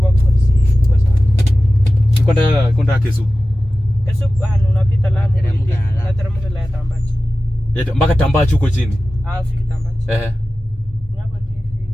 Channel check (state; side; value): normal; both; correlation 0.95